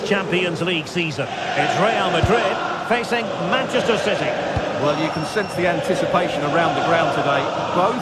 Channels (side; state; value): both; identical; correlation 1.00